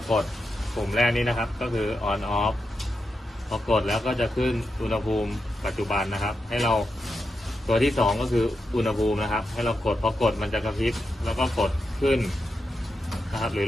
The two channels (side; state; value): both; normal; correlation 0.87